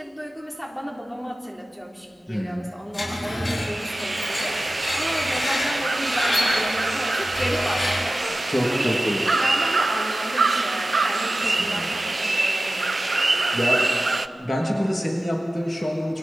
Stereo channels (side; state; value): both; normal; correlation 0.95